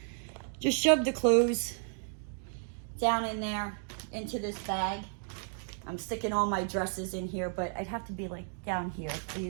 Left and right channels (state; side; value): silent; left; 56 dB below the other